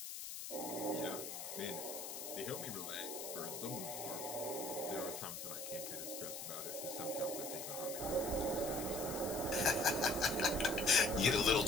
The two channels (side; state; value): left; noise; hiss, 7 dB below the sound